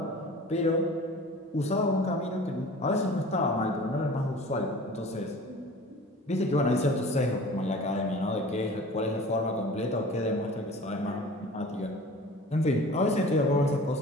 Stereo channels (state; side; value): normal; both; correlation 0.42